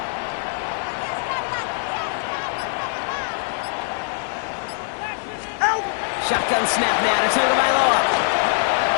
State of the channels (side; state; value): right; silent; digital silence